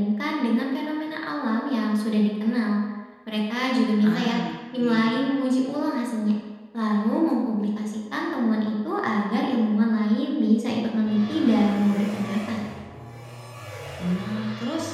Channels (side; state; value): both; identical; correlation 1.00